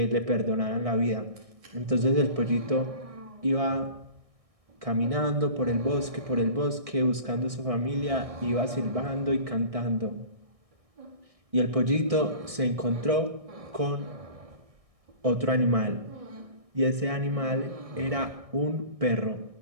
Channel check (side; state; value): left; late; 1.6 ms